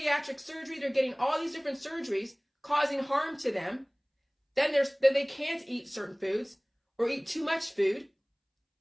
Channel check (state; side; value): identical; both; correlation 1.00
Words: surgery. They're getting all these different surgeries causing harm to them. Then they can't eat certain foods or eat too much food.